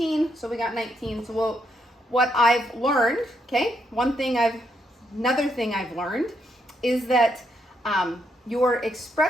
so we got 19. So what I've learned, okay, another thing I've learned is that your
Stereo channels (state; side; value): normal; both; correlation 0.77